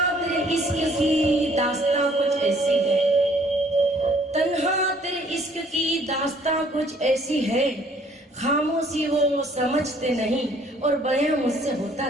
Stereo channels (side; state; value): both; normal; correlation 0.60